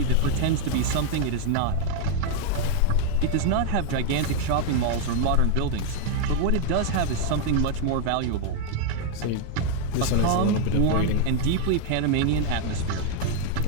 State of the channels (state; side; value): different; both; correlation 0.00